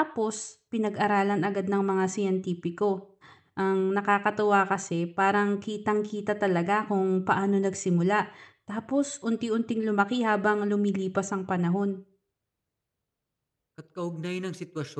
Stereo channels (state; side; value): identical; both; correlation 1.00